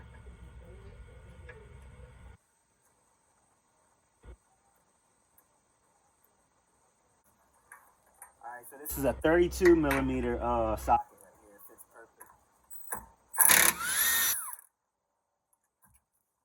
All right, so this is a 32 millimeter socket right here. It fits perfect.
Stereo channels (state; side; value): identical; both; correlation 1.00